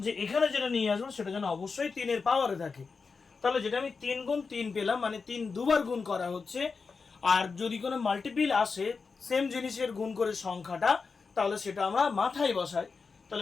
এখানে যেটা নিয়ে আসবো সেটা যেন অবশ্যই 3-এর পাওয়ারে থাকে। তাহলে যেটা আমি 3 গুণ 3 পেলাম, মানে 3 দুবার গুণ করা হচ্ছে। আর যদি কোনো মাল্টিপিল আসে সেম জিনিসের গুণ করে সংখ্যাটা, তাহলে সেটা আমরা মাথায় বসাই।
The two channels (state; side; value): quieter; right; 4.9 dB